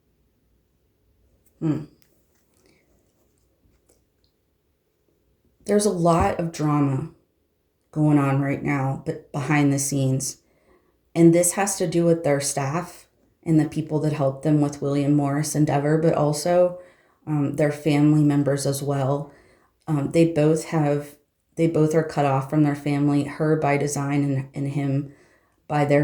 there's a lot of drama going on right now, but behind the scenes. And this has to do with their staff and the people that helped them with William Morris Endeavor, but also their family members as well. They both are cut off from their family, her by design and him by their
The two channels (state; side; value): identical; both; correlation 1.00